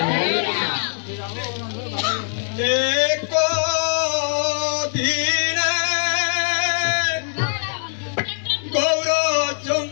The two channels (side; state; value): right; silent; 64 dB below the other